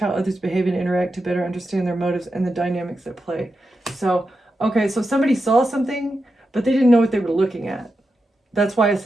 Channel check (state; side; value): normal; both; correlation 0.89